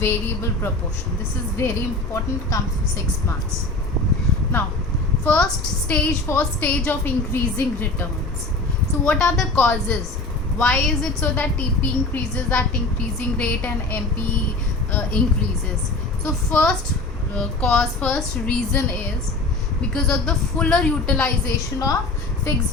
proportion. This is very important, comes to 6 marks. Now, first stage of increasing returns. So what are the causes? Why is it so that TP increases at increasing rate and MP increases? So first reason is because of the fuller utilization of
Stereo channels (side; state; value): right; quieter; 3.1 dB